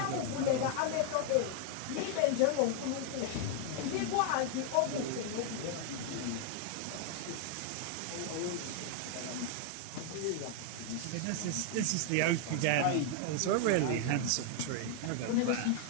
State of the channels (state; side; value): different; both; correlation 0.00